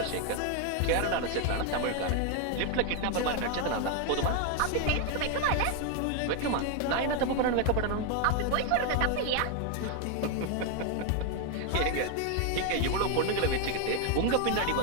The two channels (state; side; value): different; both; correlation 0.01